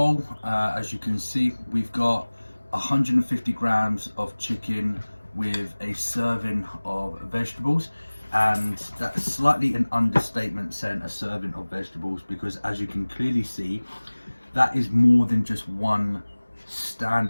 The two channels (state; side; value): inverted; both; correlation -1.00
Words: as you can see, we've got 150 grams of chicken with a serving of vegetables, and that's slightly an understatement saying a serving of vegetables, because as you can clearly see, that is more than just one